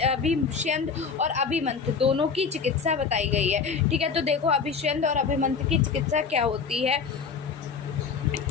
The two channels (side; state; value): right; quieter; 5.6 dB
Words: और अभिमंथ दोनों की चिकित्सा बताई गई है। ठीक है, तो देखो अभिषंध और अभिमंथ की चिकित्सा क्या होती है